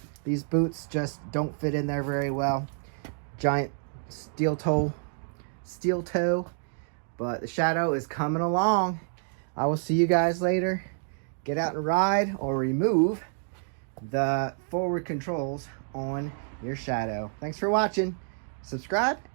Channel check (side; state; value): left; silent; digital silence